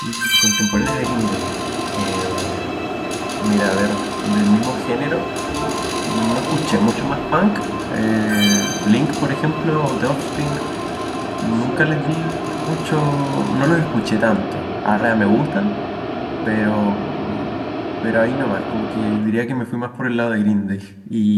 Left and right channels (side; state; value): both; identical; correlation 1.00